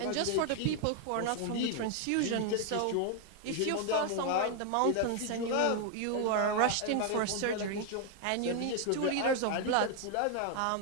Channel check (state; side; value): different; both; correlation 0.00